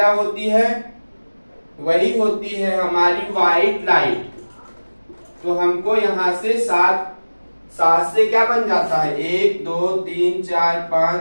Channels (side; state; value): both; inverted; correlation -1.00